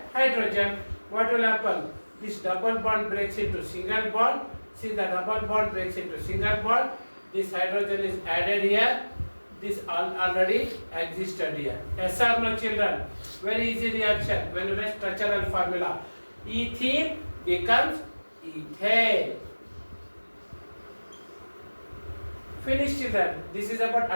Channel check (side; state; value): both; inverted; correlation -1.00